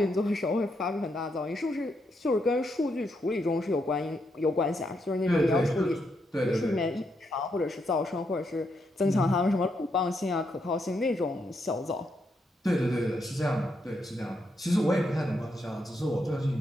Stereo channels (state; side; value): normal; both; correlation 0.80